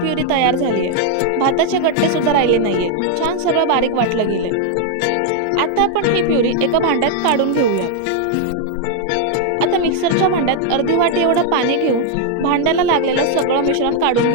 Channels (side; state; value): both; different; correlation 0.00